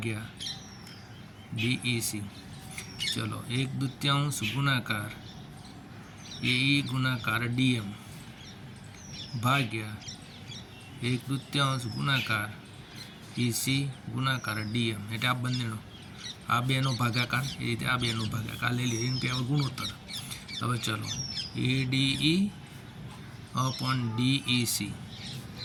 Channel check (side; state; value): both; identical; correlation 1.00